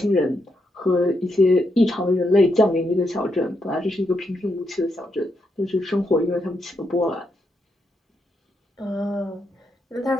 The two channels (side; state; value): both; normal; correlation 0.80